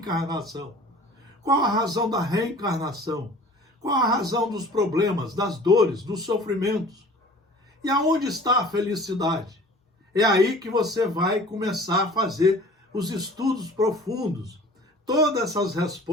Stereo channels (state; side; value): normal; both; correlation 0.46